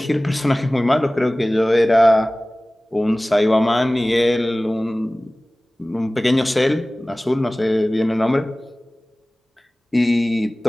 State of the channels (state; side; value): normal; both; correlation 0.98